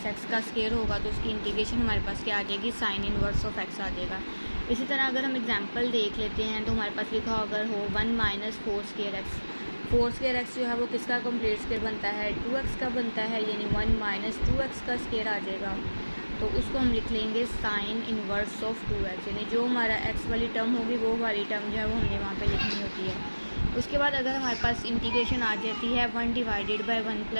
x का स्क्वायर होगा तो उसकी इंटीग्रेशन हमारे पास क्या आ जाएगी, साइन इन्वर्स ऑफ एक्स आ जाएगा। इसी तरह अगर हम एग्जांपल देख लेते हैं तो हमारे पास लिखा अगर हो 1 minus 4 square x. 4 square x जो है वो किसका कंप्लीट स्क्वायर बनता है, 2x का बनता है, यानी 1 माइनस 2x का स्क्वायर आ जाएगा। तो उसको हम लिख लेंगे साइन इन्वर्स ऑफ 2x, यानी जो हमारा x वाली टर्म होगी वो वाली टर्म जो है वो हमने वहाँ पे लिखनी होती है। उसके बाद अगर हमारे पास इंटीग्रेशन आ जाती है 1 डिवाइडेड बाय 1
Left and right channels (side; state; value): both; inverted; correlation -1.00